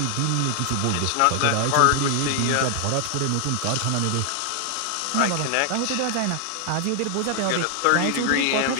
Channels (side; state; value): both; different; correlation 0.00